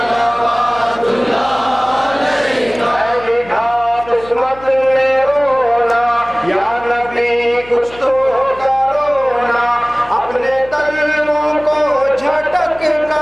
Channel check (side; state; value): left; noise; hum, 20 dB below the sound